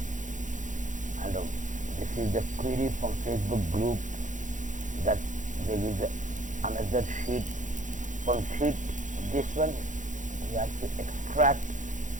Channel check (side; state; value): left; late; 0.37 ms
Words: and this is the query from Facebook group that there is another sheet. From sheet this one we have to extract